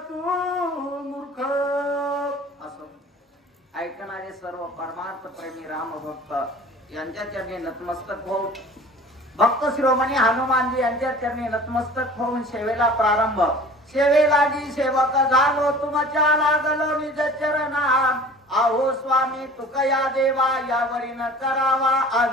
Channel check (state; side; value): normal; both; correlation 0.44